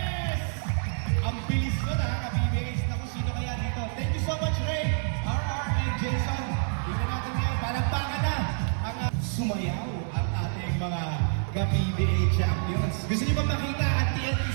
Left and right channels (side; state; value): left; silent; digital silence